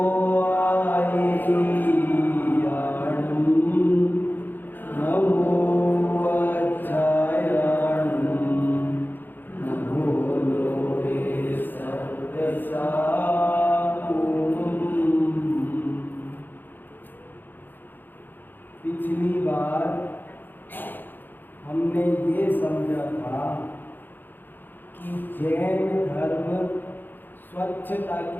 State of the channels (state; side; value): late; right; 0.091 ms